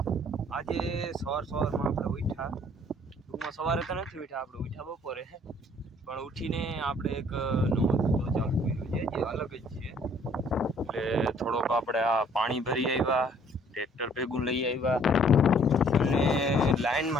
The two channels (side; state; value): both; normal; correlation 0.59